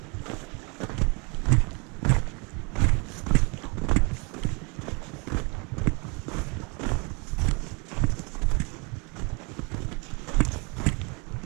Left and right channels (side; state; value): left; quieter; 31.1 dB